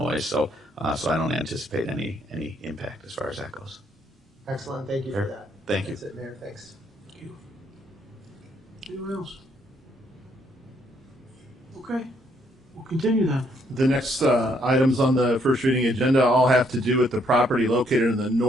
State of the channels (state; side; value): normal; both; correlation 0.70